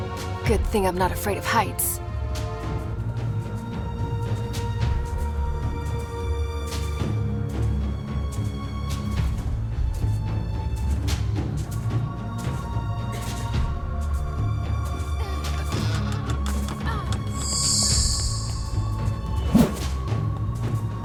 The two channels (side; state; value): both; identical; correlation 1.00